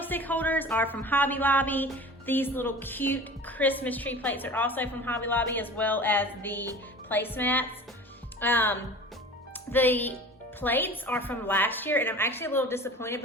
holders are from Hobby Lobby. These little cute Christmas tree plates are also from Hobby Lobby, as well as the placemats. The plates are from last year, and I'm actually a little disappointed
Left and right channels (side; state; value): both; normal; correlation 0.39